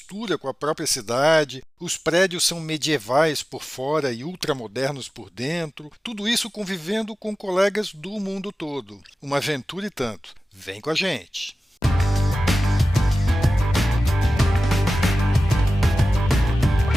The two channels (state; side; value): normal; both; correlation 0.95